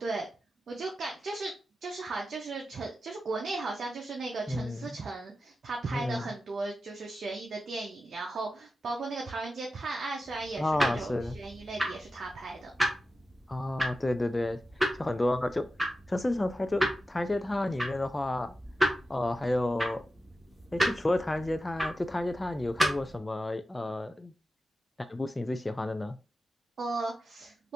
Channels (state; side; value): normal; both; correlation 0.92